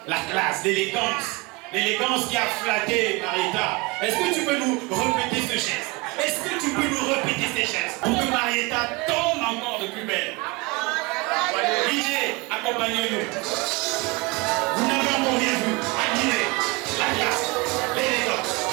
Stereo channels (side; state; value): left; quieter; 25.5 dB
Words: La classe, l'élégance qui a flatté Marietta. Est-ce que tu peux nous répéter ce geste? Est-ce que tu peux nous répéter ces gestes pour que Marietta tombe encore de plus belle? DJ, accompagnez-nous. Vous n'avez encore rien vu. Admirez la classe, l'élégance.